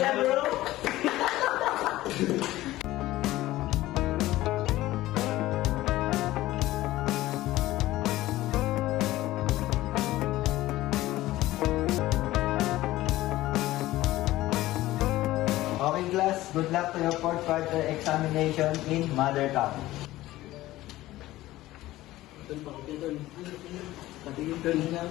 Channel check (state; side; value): quieter; right; 16.5 dB